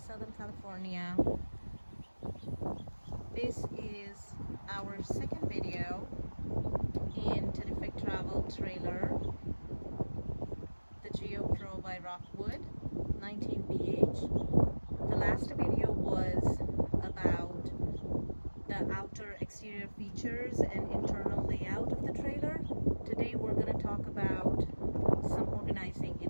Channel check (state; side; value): inverted; both; correlation -1.00